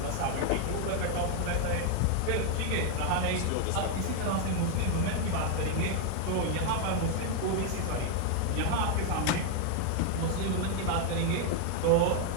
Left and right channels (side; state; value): both; different; correlation 0.00